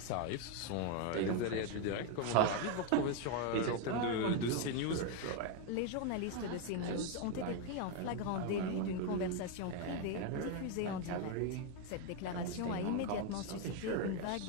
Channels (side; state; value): both; different; correlation 0.01